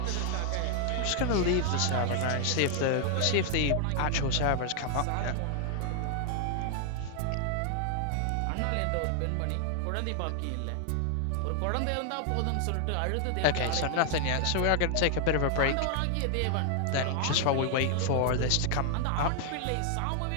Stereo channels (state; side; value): different; both; correlation 0.00